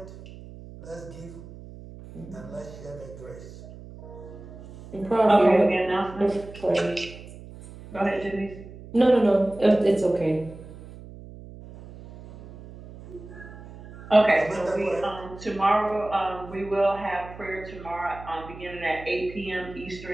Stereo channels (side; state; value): right; noise; hum, 16 dB below the sound